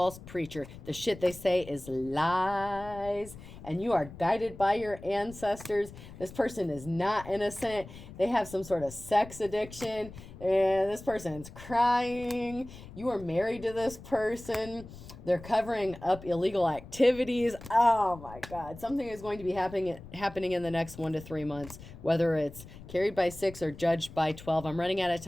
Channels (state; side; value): noise; left; rumble, 16 dB below the sound